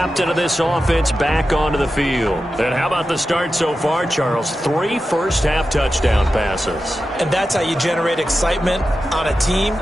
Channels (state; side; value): normal; both; correlation 0.92